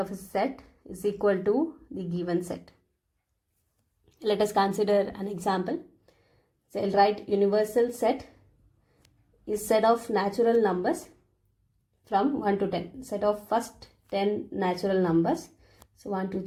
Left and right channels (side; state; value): both; identical; correlation 1.00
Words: a set is equal to the given set. Let us consider an example. So I'll write universal set is set of natural numbers from 1 to 10. Set of first 10 natural numbers. So 1, 2,